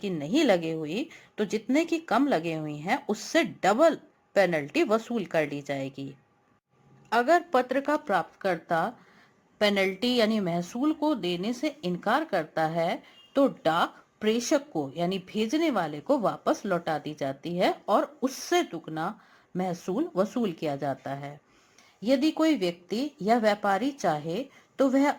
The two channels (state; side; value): identical; both; correlation 1.00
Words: नहीं लगे हुई तो जितने की कम लगे हुई हैं उससे डबल पेनल्टी वसूल कर ली जाएगी। अगर पत्र का प्राप्तकर्ता पेनल्टी यानी महसूल को देने से इनकार करता है तो डाक प्रेषक को यानी भेजने वाले को वापस लौटा दी जाती है और उससे दुगना महसूल वसूल किया जाता है। यदि कोई व्यक्ति या व्यापारी चाहे तो वह